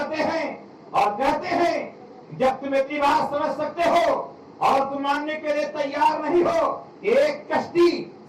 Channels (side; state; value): both; identical; correlation 1.00